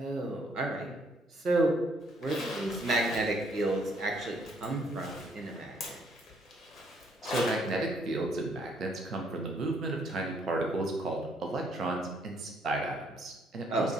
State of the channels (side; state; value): both; normal; correlation 0.68